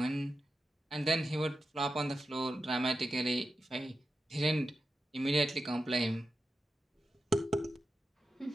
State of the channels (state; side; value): normal; both; correlation 0.90